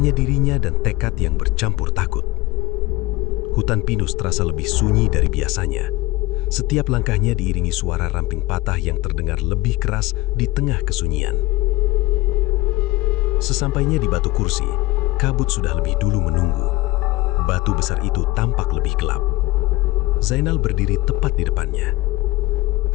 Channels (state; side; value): quieter; right; 20.2 dB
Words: dirinya dan tekad yang bercampur takut. Hutan pinus terasa lebih sunyi dari biasanya. Setiap langkahnya diiringi suara ramping patah yang terdengar lebih keras di tengah kesunyian. Sesampainya di batu kursi, kabut sudah lebih dulu menunggu. Batu besar itu tampak lebih gelap. Zainal berdiri tepat di depannya.